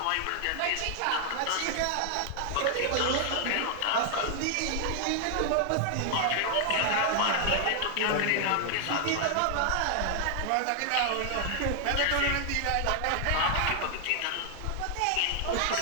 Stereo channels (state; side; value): different; both; correlation 0.00